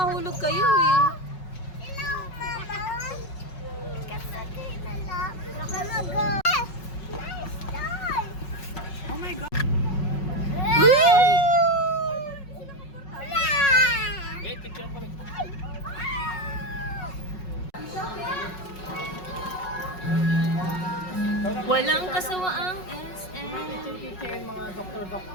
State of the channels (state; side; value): late; right; 5.4 ms